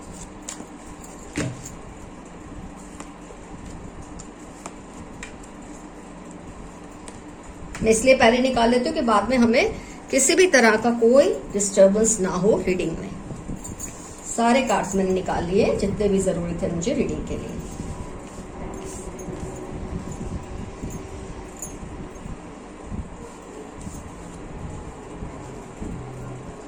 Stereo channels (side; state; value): both; identical; correlation 1.00